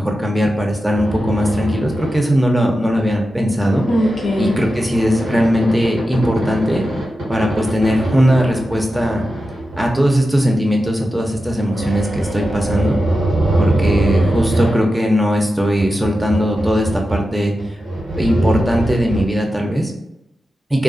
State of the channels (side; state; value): both; normal; correlation 0.91